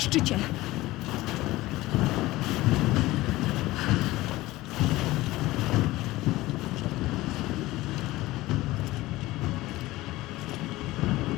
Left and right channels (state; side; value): quieter; right; 18.2 dB